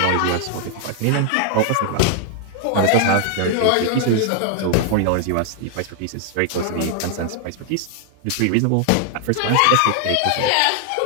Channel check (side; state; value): both; different; correlation 0.00